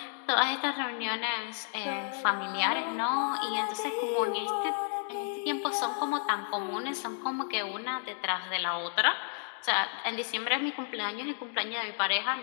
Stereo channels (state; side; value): silent; right; digital silence